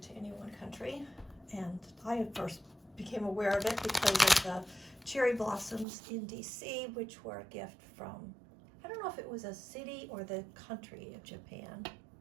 to any one country. And I first became aware of it because of the cherry blossoms in DC, which were a gift from, I don't know if it was a city or the country of Japan.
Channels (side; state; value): left; drops out; at 5.9 s